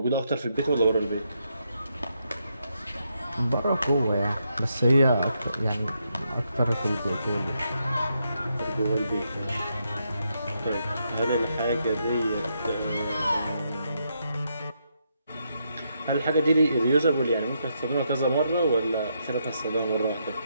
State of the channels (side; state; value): both; inverted; correlation -0.79